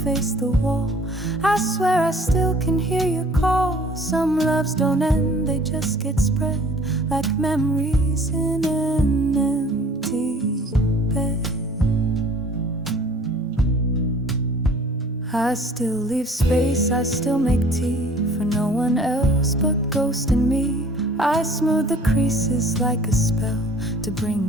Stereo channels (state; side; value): normal; both; correlation 0.52